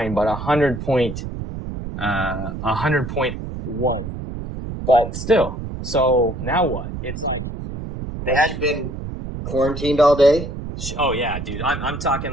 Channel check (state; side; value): noise; right; rumble, 7 dB below the sound